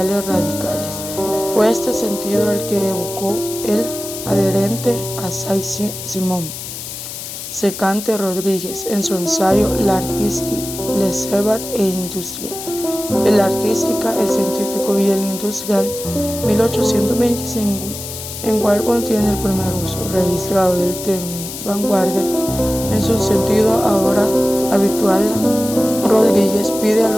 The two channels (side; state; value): left; noise; hiss, 9 dB below the sound